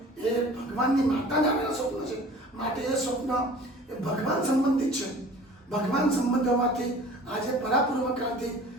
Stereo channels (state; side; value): normal; both; correlation 0.45